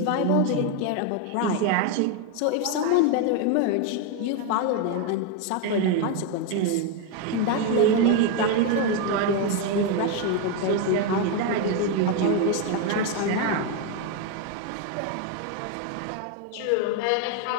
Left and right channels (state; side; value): different; both; correlation 0.01